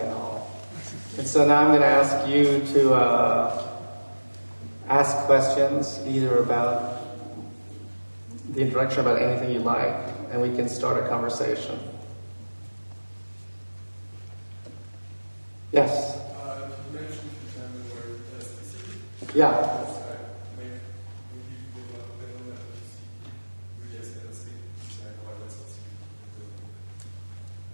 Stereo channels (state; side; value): inverted; both; correlation -1.00